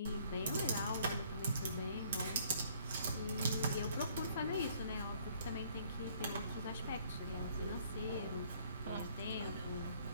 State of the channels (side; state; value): both; inverted; correlation -0.61